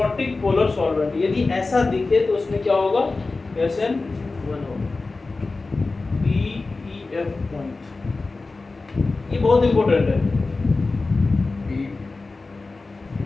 पोलर सॉल्वेंट। यदि ऐसा दिखे तो उसमें क्या होगा, SN1 होगा, PEF पॉइंट। ये बहुत इंपॉर्टेंट है,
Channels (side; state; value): right; quieter; 3.6 dB